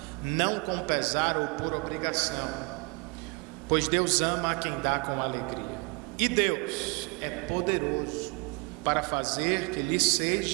não com pesar ou por obrigação, pois Deus ama a quem dá com alegria. E Deus é poderoso para fazer que lhe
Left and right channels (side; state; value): left; quieter; 32.4 dB